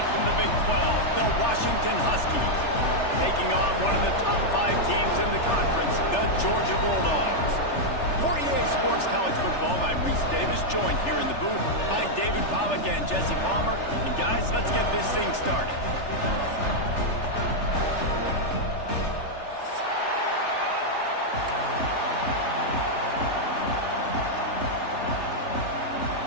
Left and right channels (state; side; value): late; right; 3.4 ms